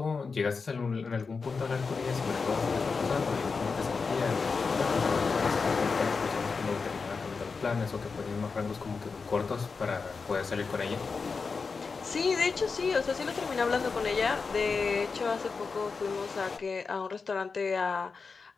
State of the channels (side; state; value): right; quieter; 4.8 dB